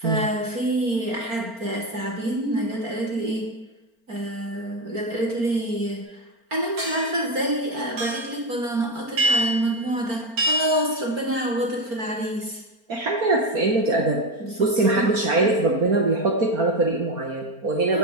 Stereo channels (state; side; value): late; left; 4.4 ms